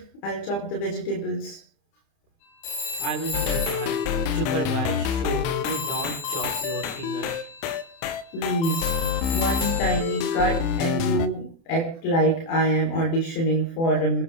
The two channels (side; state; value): right; late; 30 ms